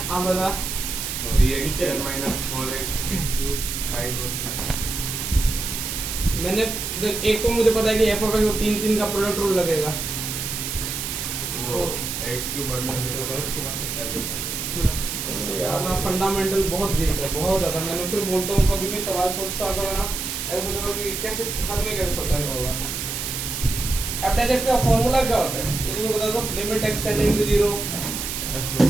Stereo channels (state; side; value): noise; right; hiss, 4 dB below the sound